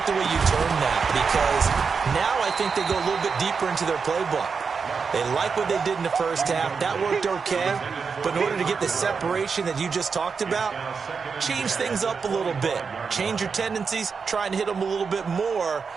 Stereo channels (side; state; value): left; quieter; 5.5 dB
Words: the way you term that because now I think they go a little bit deeper into their playbook. They like what they did in the first half. That worked okay. But in order to get the separation that you just talked about, change things up a little bit. Change your tendencies. Try and hit them a little bit more